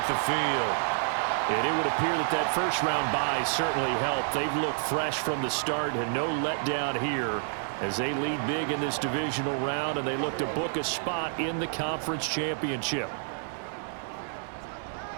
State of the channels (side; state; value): left; silent; 59 dB below the other